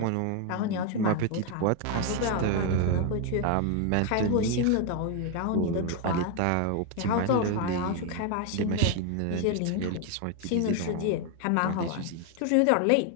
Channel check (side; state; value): both; different; correlation 0.01